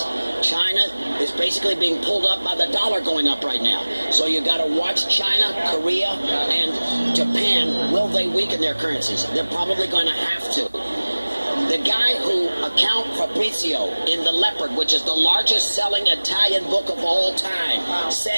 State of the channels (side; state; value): both; inverted; correlation -1.00